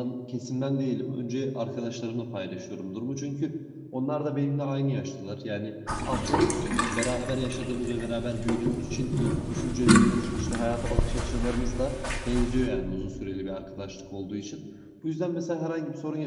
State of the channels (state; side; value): identical; both; correlation 1.00